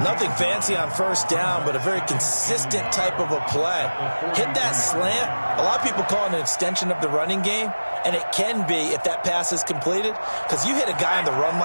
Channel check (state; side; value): inverted; both; correlation -1.00